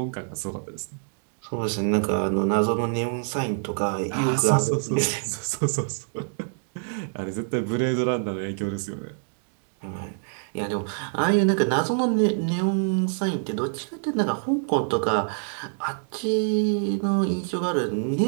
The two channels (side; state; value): left; silent; digital silence